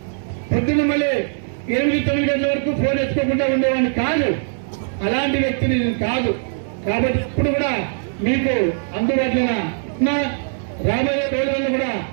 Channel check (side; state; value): left; silent; digital silence